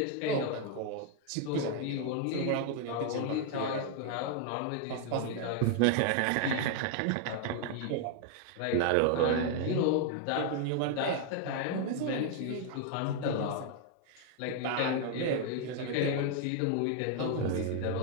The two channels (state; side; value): different; both; correlation 0.00